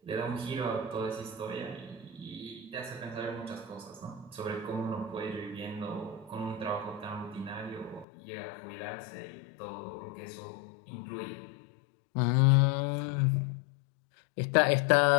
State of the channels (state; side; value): drops out; right; at 8.1 s